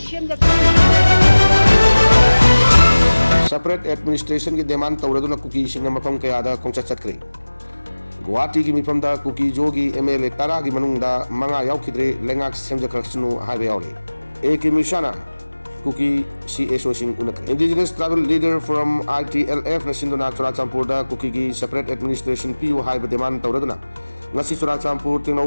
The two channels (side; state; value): both; inverted; correlation -1.00